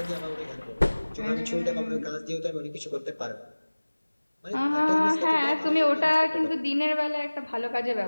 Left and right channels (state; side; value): inverted; both; correlation -1.00